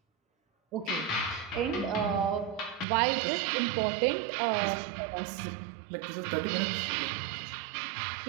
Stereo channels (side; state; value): left; drops out; at 2.9 s